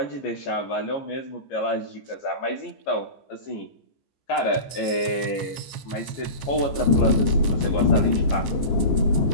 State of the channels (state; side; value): late; right; 15 ms